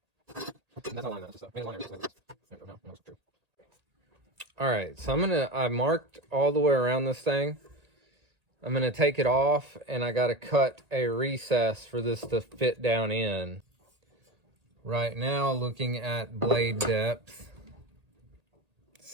All right, so I marked all the way around this thing. I'm gonna take it off, and I gotta cut a recess for this to fit down in. Right now, looking at blade depth, it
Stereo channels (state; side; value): late; left; 1.8 ms